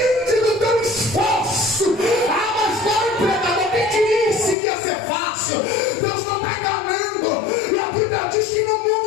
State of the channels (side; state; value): right; drops out; at 4.5 s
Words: do teu esforço. Ah, mas vai, pregador, quem te disse que ia ser fácil? Deus não está enganando, e a Bíblia diz que no